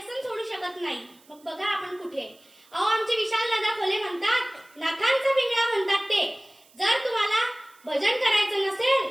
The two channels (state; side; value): noise; right; hiss, 29 dB below the sound